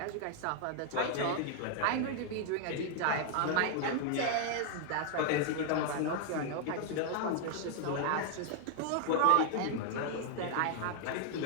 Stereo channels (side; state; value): both; different; correlation 0.00